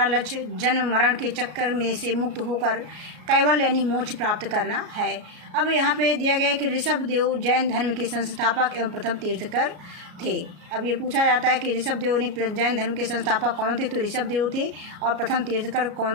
लक्ष्य जन्म मरण के चक्कर में से मुक्त होकर कैवल्य यानी मोक्ष प्राप्त करना है। अब यहाँ पे दिया गया है कि ऋषभ देव जैन धर्म के संस्थापक एवं प्रथम तीर्थकर थे। अब ये पूछा जाता है कि ऋषभ देव ने जैन धर्म के संस्थापक कौन थे? तो ऋषभ देव थे। और प्रथम तीर्थकर कौन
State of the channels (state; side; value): late; left; 33 ms